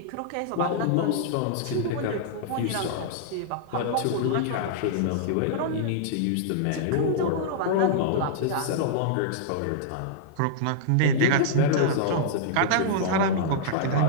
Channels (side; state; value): both; different; correlation -0.02